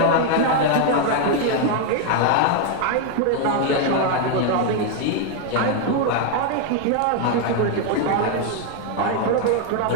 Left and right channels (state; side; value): different; both; correlation 0.01